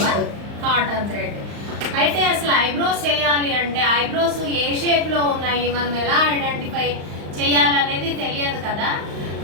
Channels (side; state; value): left; late; 35 ms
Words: కాటన్ థ్రెడ్. అయితే అసలు ఐబ్రోస్ చేయాలి అంటే ఐబ్రోస్ ఏ షేప్లో ఉన్నాయి, మనం ఎలా ఐడెంటిఫై చేయాలనేది తెలియదు కదా.